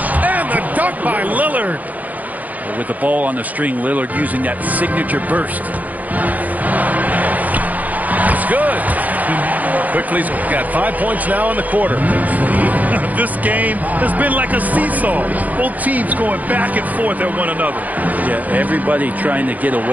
And the dunk by Lillard. With the ball on the string, Lillard using that signature burst. It's good. Quickly's got 5 points now in the quarter. This game has been like a seesaw. Both teams going back and forth at one another. Yeah, everybody trying to get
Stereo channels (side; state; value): left; late; 0.079 ms